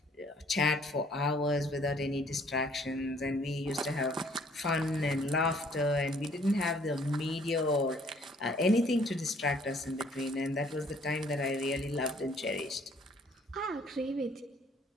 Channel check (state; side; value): normal; both; correlation 0.61